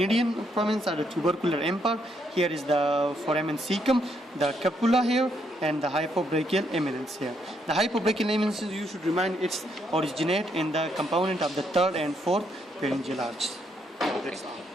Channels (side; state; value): both; normal; correlation 0.75